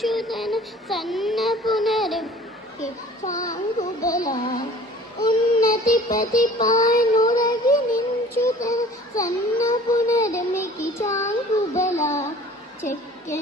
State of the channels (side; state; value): both; normal; correlation 0.48